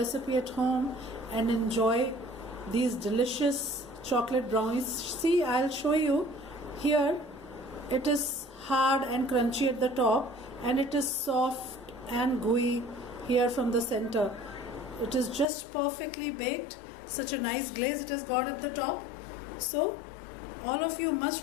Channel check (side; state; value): right; drops out; at 15.5 s